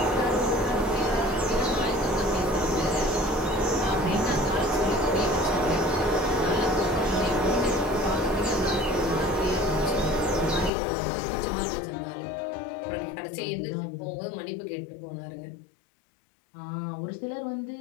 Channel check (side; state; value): right; drops out; at 10.7 s